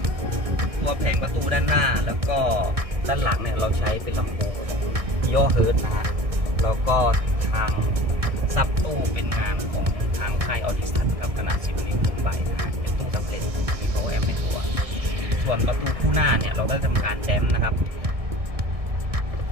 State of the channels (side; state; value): left; late; 1.6 ms